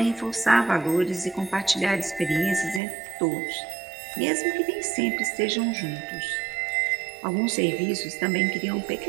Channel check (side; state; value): left; drops out; at 2.8 s